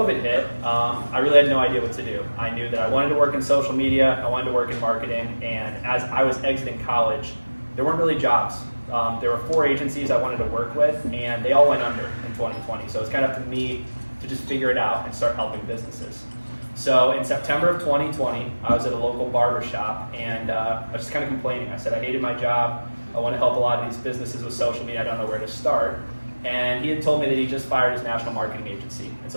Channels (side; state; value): both; inverted; correlation -1.00